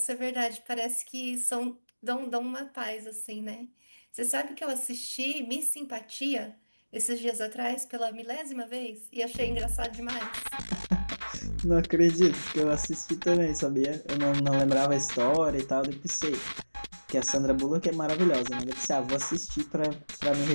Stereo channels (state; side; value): inverted; both; correlation -1.00